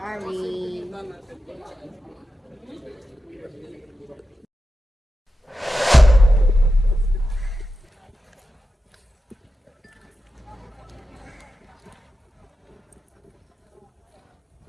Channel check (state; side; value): normal; both; correlation 0.91